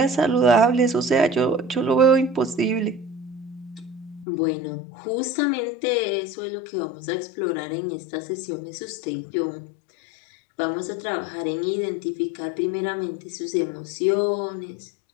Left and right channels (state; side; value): drops out; right; at 4.2 s